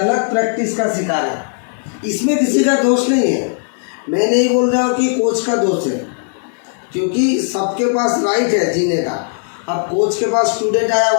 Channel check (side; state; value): right; silent; digital silence